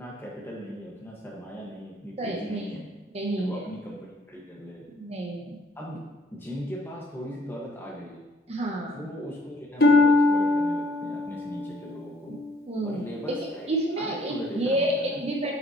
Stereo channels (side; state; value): both; normal; correlation 0.61